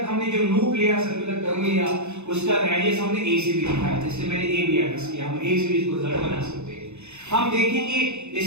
हमने जो लूप लिया, सर्कुलर टर्म लिया, उसका रेडियस हमने ए से भी दिखाया था, इसलिए मैंने ए भी एड्रेस किया। हम ए से भी इसको रिजल्ट बना सकते हैं। हम देखेंगे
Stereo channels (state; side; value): late; left; 0.82 ms